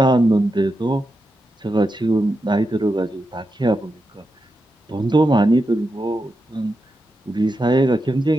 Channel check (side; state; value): both; normal; correlation 0.88